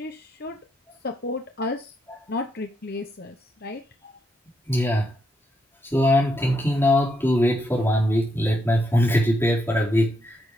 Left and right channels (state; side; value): normal; both; correlation 0.79